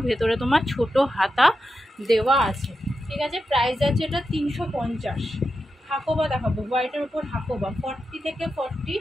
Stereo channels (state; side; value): normal; both; correlation 0.89